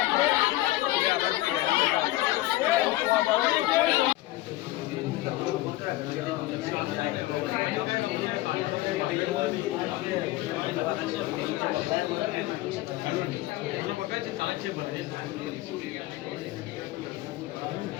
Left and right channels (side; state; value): right; quieter; 17.3 dB